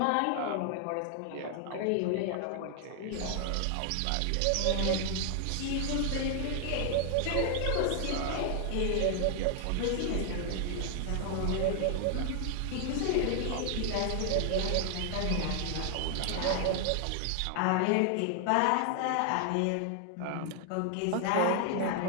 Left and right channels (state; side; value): different; both; correlation 0.00